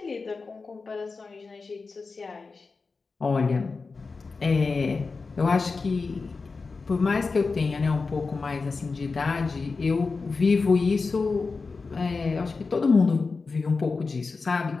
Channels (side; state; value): right; quieter; 4.3 dB